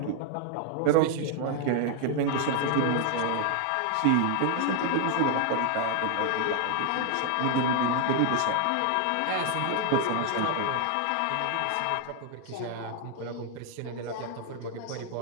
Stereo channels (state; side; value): different; both; correlation 0.00